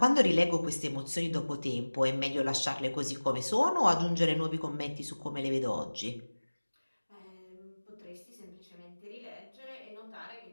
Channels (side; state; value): both; inverted; correlation -1.00